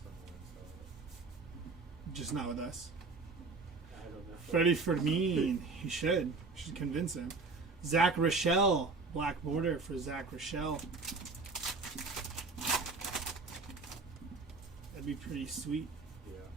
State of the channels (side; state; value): left; quieter; 4.0 dB